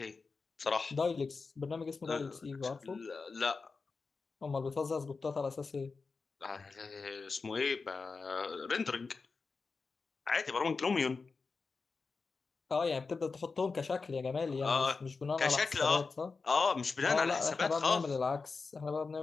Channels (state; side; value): quieter; right; 4.4 dB